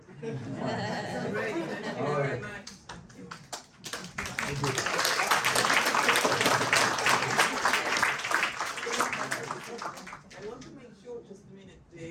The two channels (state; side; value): identical; both; correlation 1.00